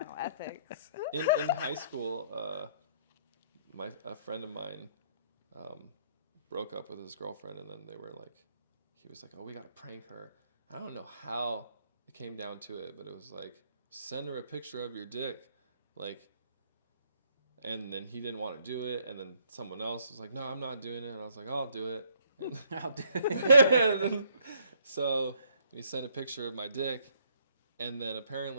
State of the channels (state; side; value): inverted; both; correlation -0.66